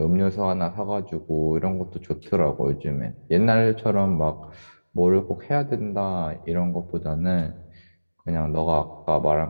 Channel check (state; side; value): inverted; both; correlation -1.00